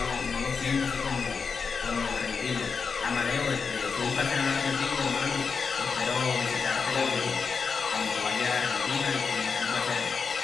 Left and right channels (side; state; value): right; quieter; 5.4 dB